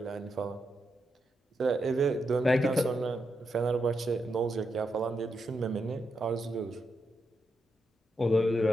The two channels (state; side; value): normal; both; correlation 0.84